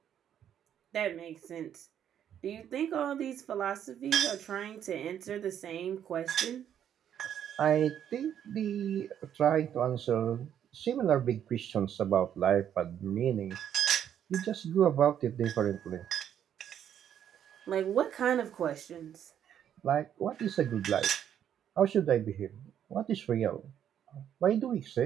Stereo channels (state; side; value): quieter; left; 9.7 dB